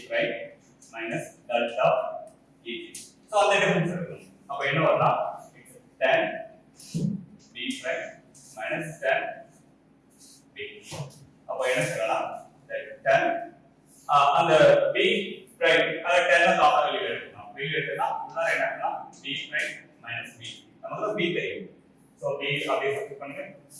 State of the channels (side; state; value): both; identical; correlation 1.00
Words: prime minus delta ej so அந்த டிஃபரன்ஸ் இருக்கும் அப்ப என்ன வரும்னா tan b prime minus tan b அப்ப என்ன செய்யலாம் tan அந்த b prime அத tan ஆஃப் வெளிய எடுக்கலாம் வெளிய எடுத்தா உள்ள என்னன்னா b prime minus b நமக்கு b தெரியும் so b அப்படியே சப்ஸ்டிட்